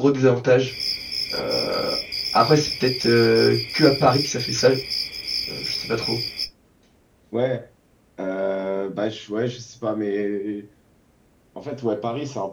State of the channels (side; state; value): both; identical; correlation 1.00